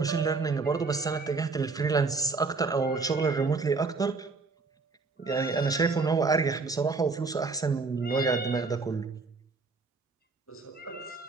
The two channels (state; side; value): quieter; left; 4.2 dB